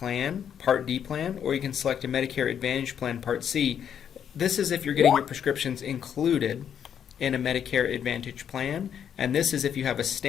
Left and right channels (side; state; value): right; quieter; 8.7 dB